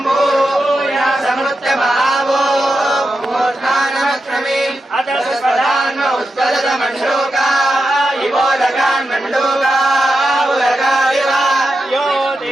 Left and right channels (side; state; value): both; normal; correlation 0.89